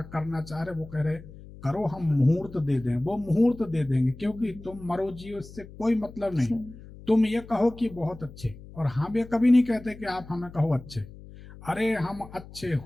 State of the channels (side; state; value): left; noise; hum, 17 dB below the sound